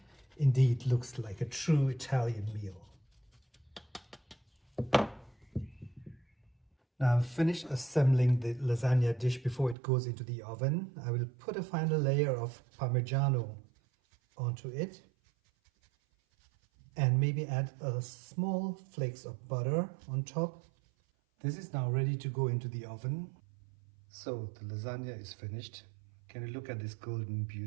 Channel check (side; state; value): left; drops out; at 9.8 s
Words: indeed looks like a true Italian meal. Now I've finished assembling the lasagna dish before it goes into the oven. I will put a final layer of Parmigiano onto it. And maybe add a small flakes of butter on top. This is now ready to go into the oven. So the lasagna is finished. Can you look at this golden